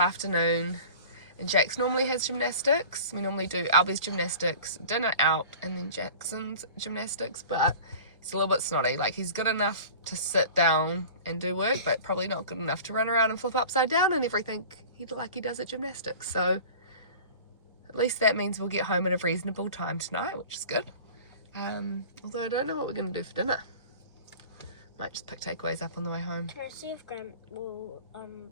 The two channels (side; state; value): both; inverted; correlation -0.40